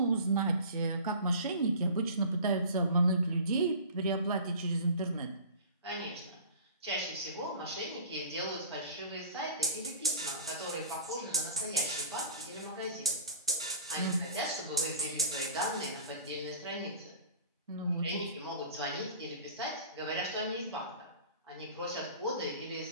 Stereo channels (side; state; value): both; inverted; correlation -0.41